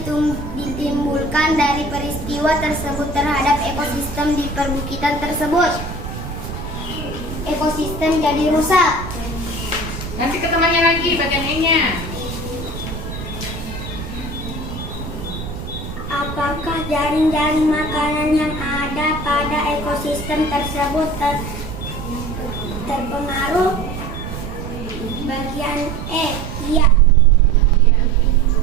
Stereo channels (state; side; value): noise; right; rumble, 9 dB below the sound